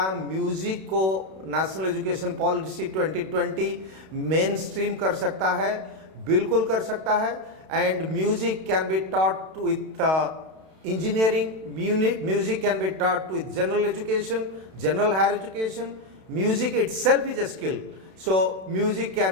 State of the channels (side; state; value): left; late; 32 ms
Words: म्यूजिक को national education policy 2020 main stream कर सकता है? बिल्कुल कर सकता है. And music can be taught with engineering, music can be taught with general education, general higher education. Music itself is a skill. So music